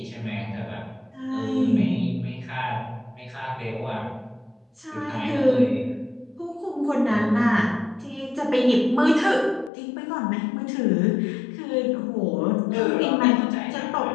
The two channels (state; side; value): drops out; right; at 9.7 s